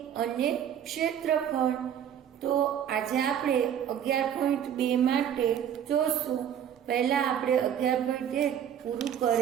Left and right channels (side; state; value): left; quieter; 9.4 dB